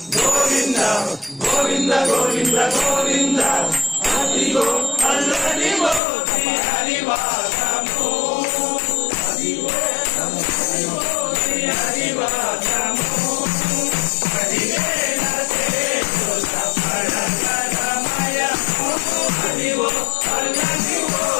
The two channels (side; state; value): right; drops out; at 6.0 s